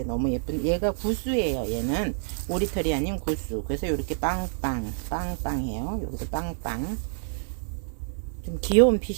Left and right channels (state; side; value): silent; left; 58 dB below the other